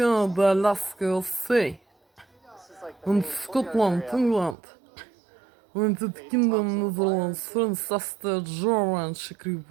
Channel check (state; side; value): drops out; left; at 4.5 s